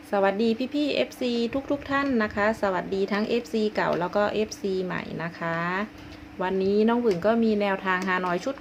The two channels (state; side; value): identical; both; correlation 1.00